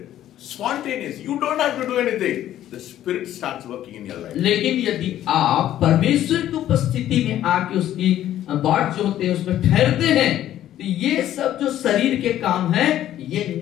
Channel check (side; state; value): right; quieter; 12.3 dB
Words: spontaneous. You don't have to do anything. The spirit starts working in your life. लेकिन यदि आप परमेश्वर की उपस्थिति में आके उसकी बाट जो होते हैं उसमें ठहरते हैं, तो ये सब जो शरीर के काम हैं ये